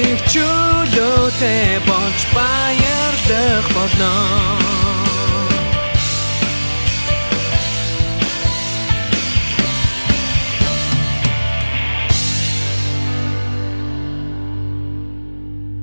чөлөөтэй болж баярлах болно.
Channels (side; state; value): both; inverted; correlation -1.00